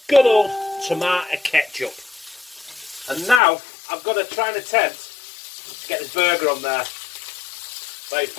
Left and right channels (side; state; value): right; drops out; at 3.4 s